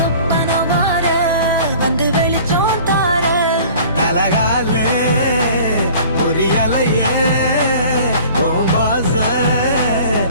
மாற வந்து வெளிச்சம் தார தலகாலே பொரியலையே பாச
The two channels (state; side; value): inverted; both; correlation -0.47